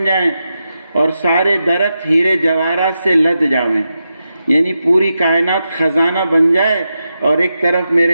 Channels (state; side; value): inverted; both; correlation -0.88